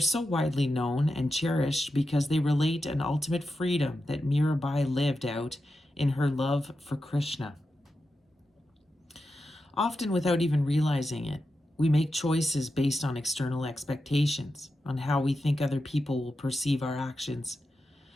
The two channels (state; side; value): normal; both; correlation 0.89